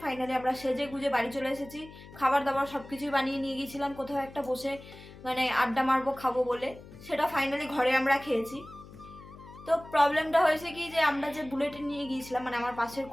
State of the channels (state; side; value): noise; left; hum, 18 dB below the sound